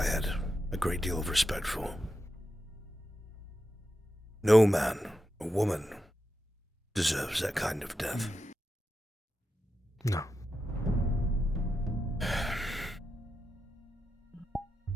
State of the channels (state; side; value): normal; both; correlation 0.89